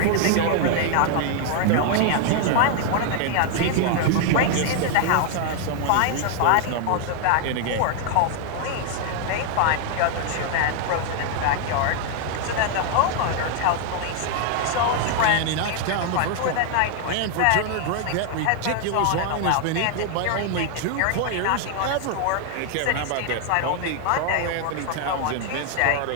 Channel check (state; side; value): different; both; correlation 0.00